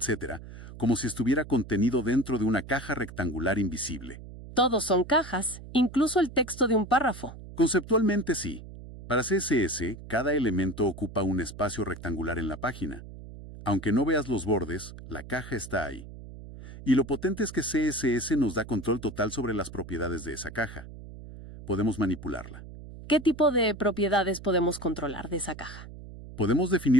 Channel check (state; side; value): noise; right; hum, 14 dB below the sound